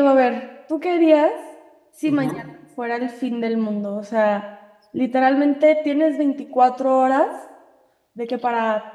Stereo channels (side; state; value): both; identical; correlation 1.00